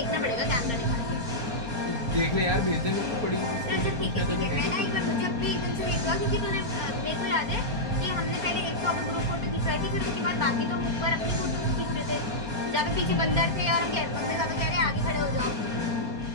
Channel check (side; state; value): left; late; 4.3 ms